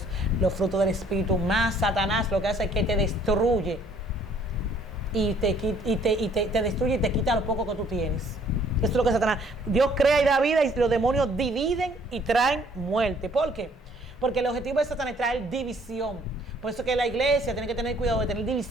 los frutos del Espíritu. Más Satanás lo que hace es que te destruye. Y te destruye y te quita lo poco que tú tienes. Esto es lo que Satanás. Dios crea y da vida y los demonios dividen y traen muerte. ¿Por qué? Porque el objetivo de Satanás es traer división. Por eso que la iglesia tiene que tener cuidado de tener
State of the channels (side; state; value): both; normal; correlation 0.61